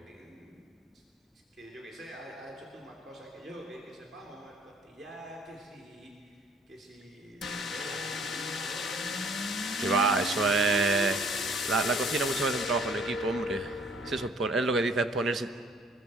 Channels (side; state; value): both; normal; correlation 0.58